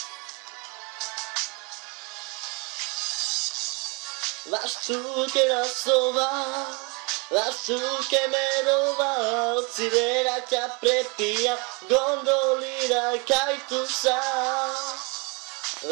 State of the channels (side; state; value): left; quieter; 30.5 dB